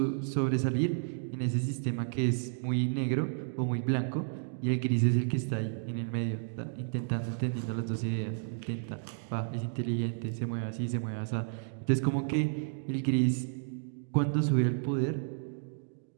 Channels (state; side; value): silent; left; digital silence